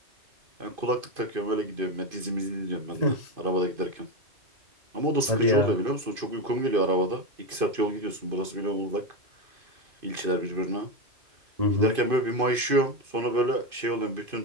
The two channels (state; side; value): late; left; 2.5 ms